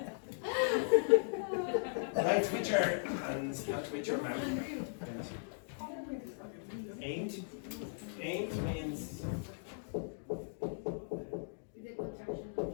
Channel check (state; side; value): silent; right; digital silence